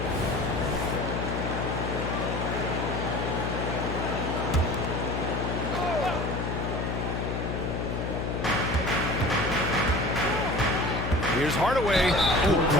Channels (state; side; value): noise; left; hum, 2 dB below the sound